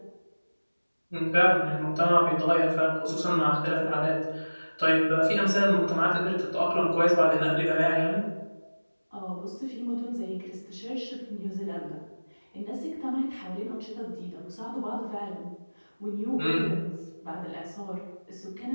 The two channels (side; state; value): both; inverted; correlation -1.00